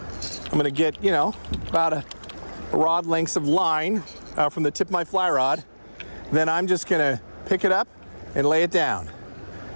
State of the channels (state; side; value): inverted; both; correlation -1.00